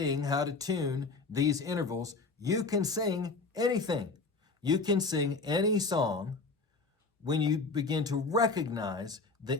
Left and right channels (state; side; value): quieter; right; 3.9 dB